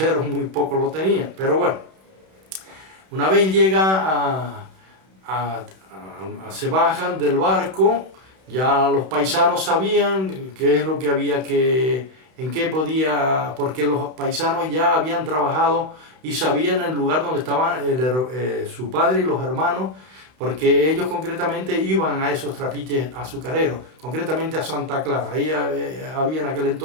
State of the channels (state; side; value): late; left; 31 ms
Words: muy poco lo tenían. Pero bueno, una vez llega se bajan del barco, ya los paisanos sabían qué es lo que había en qué podía, porque los paisanos ya habían trabajado y sabían el lugar donde estaban su padre y los hermanos, porque ellos concretamente iban a esos trapiches azucareros, concretamente a Santa Clara. Ahí había en aquel